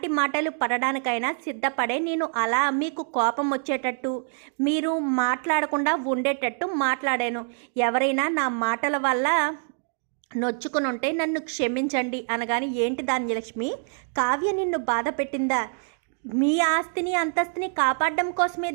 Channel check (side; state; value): left; silent; 58 dB below the other